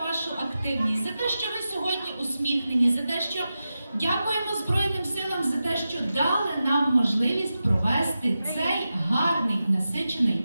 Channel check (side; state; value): both; inverted; correlation -0.92